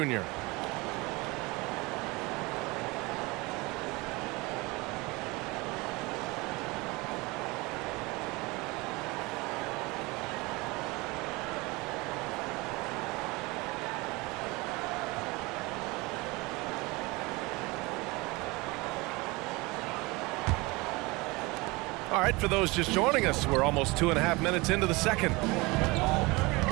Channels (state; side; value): quieter; left; 24.1 dB